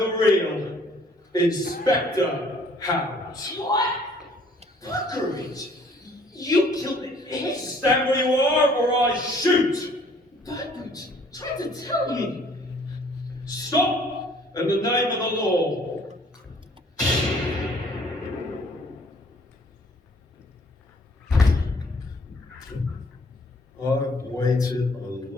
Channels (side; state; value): both; normal; correlation 0.58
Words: real Inspector Hound. What? Great. You killed Stand where you are, or I shoot! Birdboot, try to tell me. Stop, in the name of the law. I've waited a